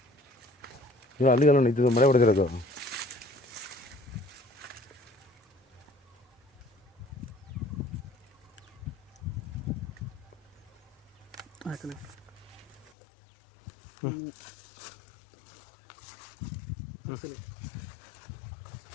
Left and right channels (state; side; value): drops out; right; at 12.9 s